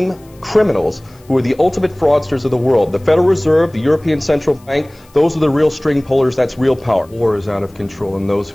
criminals who are the ultimate fraudsters of the world. The Federal Reserve, the European Central Bank, those are the real string pullers, that's real power. War is out of control, and those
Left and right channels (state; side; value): noise; left; hiss, 29 dB below the sound